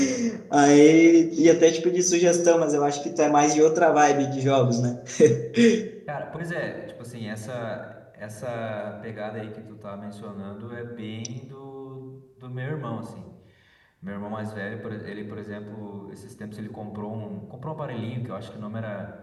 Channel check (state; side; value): identical; both; correlation 1.00